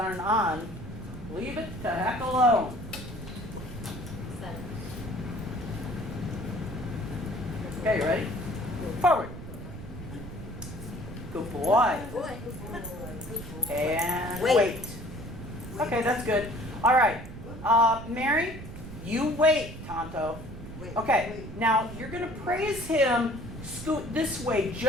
on. Leave it the heck alone. Okay, you ready? Forward. Good boy. And wait. Okay, that's good. All right. Mary, you wait, Tonto. Okay, now you're going to praise him. Scoot this way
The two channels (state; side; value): noise; right; rumble, 11 dB below the sound